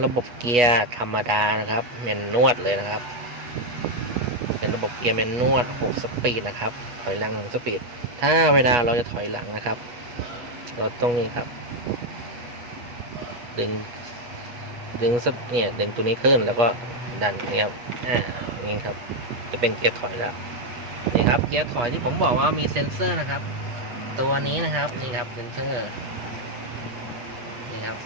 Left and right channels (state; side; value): late; left; 8.3 ms